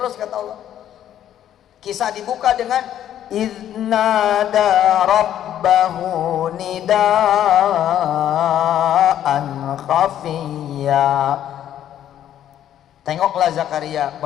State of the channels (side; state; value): right; quieter; 11.0 dB